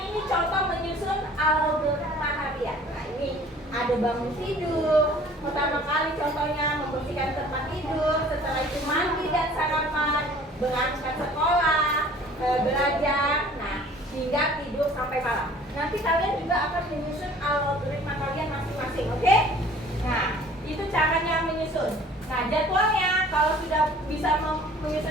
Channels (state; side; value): normal; both; correlation 0.50